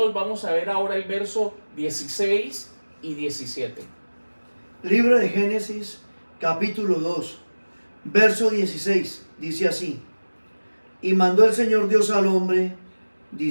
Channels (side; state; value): both; inverted; correlation -1.00